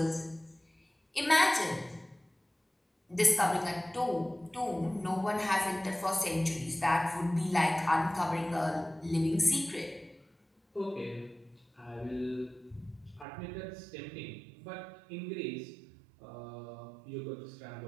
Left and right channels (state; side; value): drops out; left; at 13.2 s